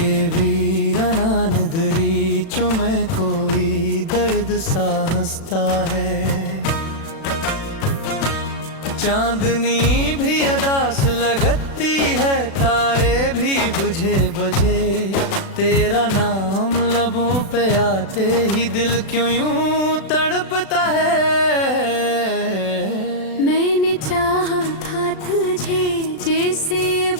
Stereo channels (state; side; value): late; right; 36 ms